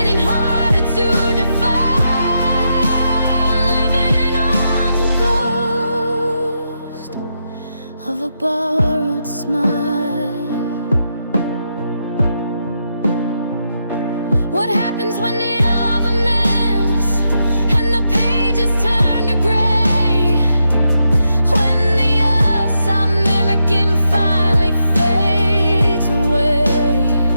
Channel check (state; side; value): inverted; both; correlation -0.83